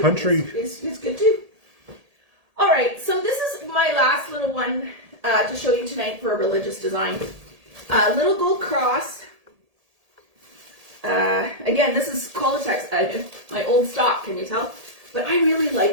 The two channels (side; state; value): left; late; 1.8 ms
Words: Is good too. All right. my last little one to show you tonight for a religious design. Little gold cross. Again, this is Qualitex, my old stock, can you tell? But I really